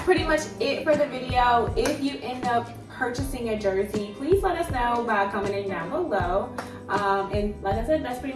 pretty much it for the video. If you end up purchasing a jersey, please let us know by commenting down below. And like I said, that's pretty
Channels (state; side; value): identical; both; correlation 1.00